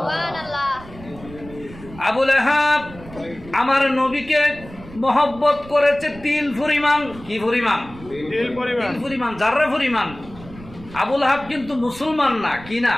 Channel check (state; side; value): noise; right; rumble, 18 dB below the sound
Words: আবু লাহাব আমার নবীকে মহব্বত করেছে তিল পরিমাণ। কি পরিমাণ? তিল পরিমাণ, জাররা পরিমাণ। আবু লাহাব কিন্তু মুসলমান না। কি না?